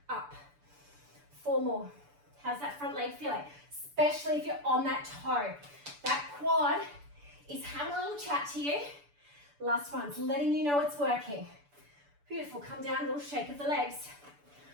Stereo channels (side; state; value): left; late; 6.9 ms